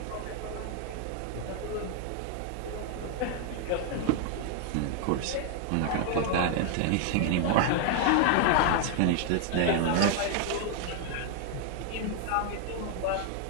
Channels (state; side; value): different; both; correlation 0.00